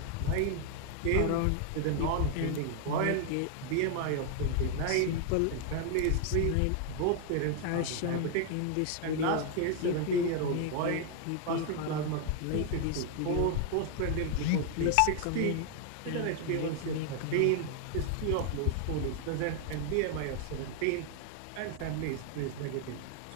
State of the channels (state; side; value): different; both; correlation 0.00